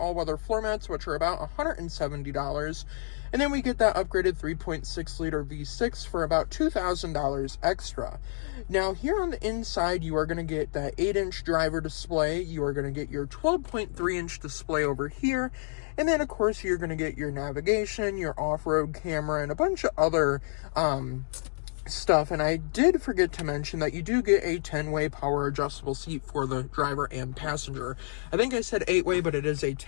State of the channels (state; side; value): silent; right; digital silence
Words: floor mats, which are about $170. And then we get that upgraded 3.6 liter V6 for about $2,000 extra. Now here on the inside, you are going to get that 8-inch driver display. You are going to get your 12.3-inch display over here. And then of course you're going to get your navigation, your off-road camera, and a bunch of other stuff. And I did forget to mention that you do get a 10-way power adjustable seat for the driver and passenger. I think I said 8-way, but it is a